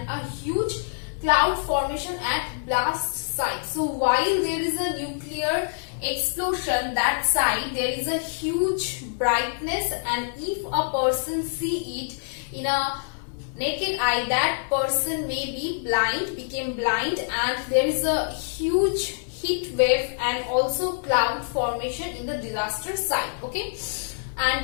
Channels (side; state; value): right; silent; 61 dB below the other